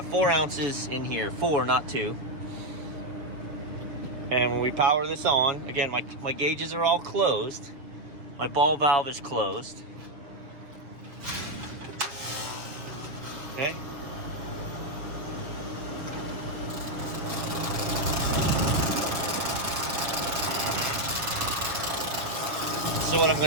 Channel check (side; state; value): left; late; 6.9 ms